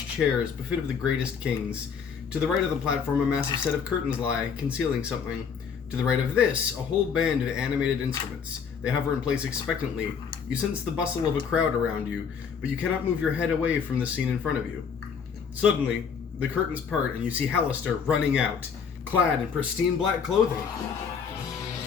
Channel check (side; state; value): right; quieter; 6.6 dB